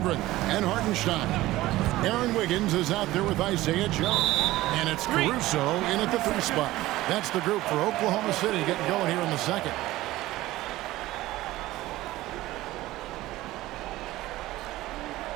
and Hartenstein. Aaron Wiggins is out there with Isaiah Joe. And it's Caruso in at the 3 spot. That's the group for Oklahoma City getting going here in the second.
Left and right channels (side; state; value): left; quieter; 17.0 dB